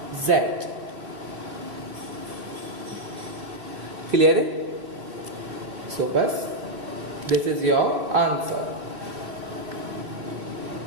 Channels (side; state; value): left; late; 2.4 ms